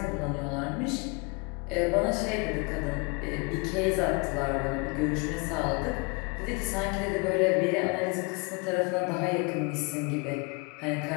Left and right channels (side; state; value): right; quieter; 30.6 dB